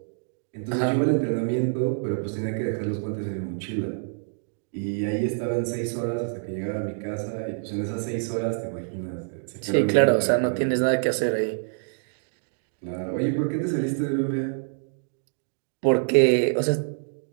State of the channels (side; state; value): left; silent; digital silence